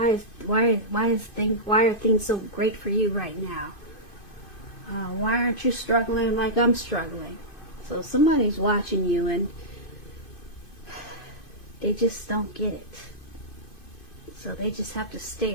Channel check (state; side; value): late; right; 2.5 ms